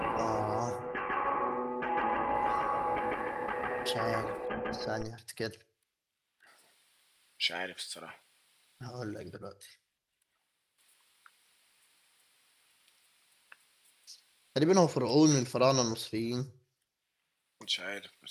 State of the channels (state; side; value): identical; both; correlation 1.00